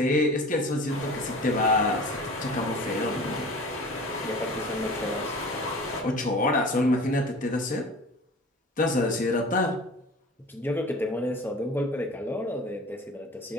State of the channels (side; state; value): both; normal; correlation 0.40